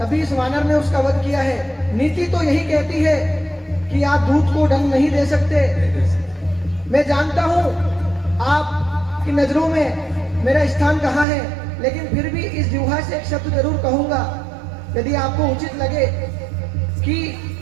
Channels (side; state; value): left; drops out; at 11.2 s